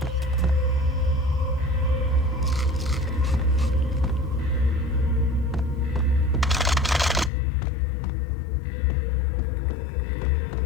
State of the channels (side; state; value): right; drops out; at 7.3 s